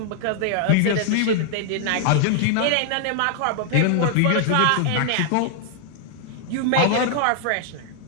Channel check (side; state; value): both; different; correlation 0.00